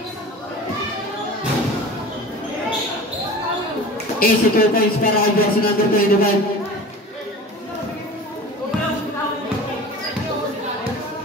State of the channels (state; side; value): normal; both; correlation 0.37